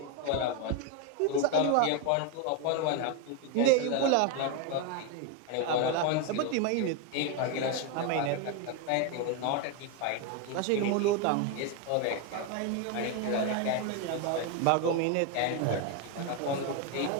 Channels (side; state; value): both; different; correlation 0.01